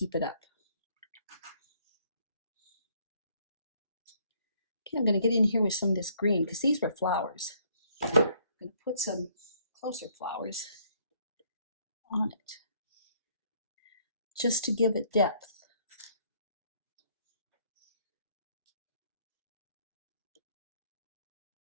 it up. Okay, I'm going to get in here with some of this green, because these were flowers. I'm going to put some closer flowers on it, just to give it depth.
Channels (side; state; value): both; inverted; correlation -0.66